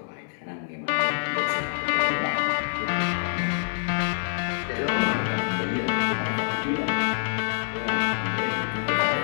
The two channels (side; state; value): right; silent; digital silence